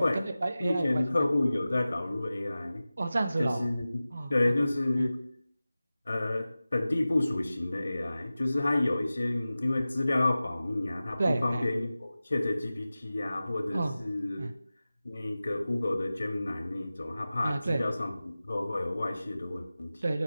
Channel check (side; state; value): both; inverted; correlation -0.96